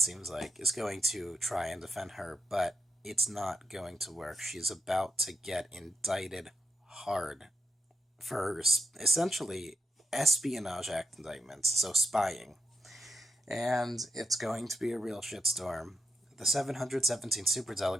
seems like, is going to try and defend her, but it's not going to work. She's about to get indicted hard for essentially Espionage Act indictments, so spying. And it's going to be a real shitstorm. The 717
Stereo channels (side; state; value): both; normal; correlation 0.84